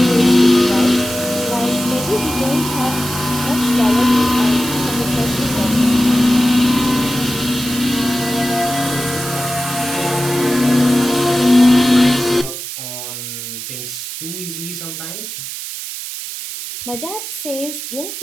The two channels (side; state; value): right; noise; hiss, 8 dB below the sound